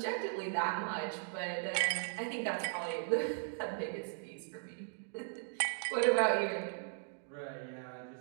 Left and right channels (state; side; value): silent; left; 53 dB below the other